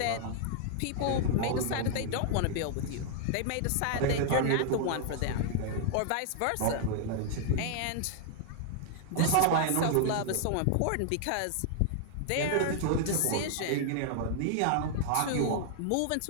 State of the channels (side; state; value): both; different; correlation 0.00